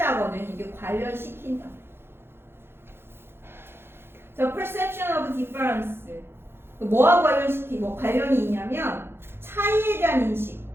이게 관련시킨다. 자, perception of difference. 뭐하고 관련이 있냐면 차이에 대한 인식.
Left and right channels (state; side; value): late; left; 0.11 ms